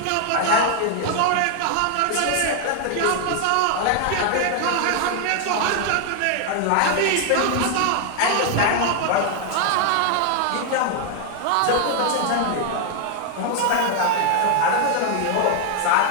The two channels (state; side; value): different; both; correlation 0.00